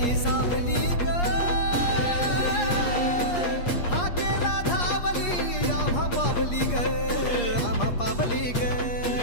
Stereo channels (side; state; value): right; late; 8.5 ms